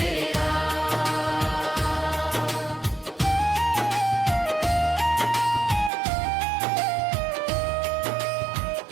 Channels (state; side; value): drops out; left; at 5.9 s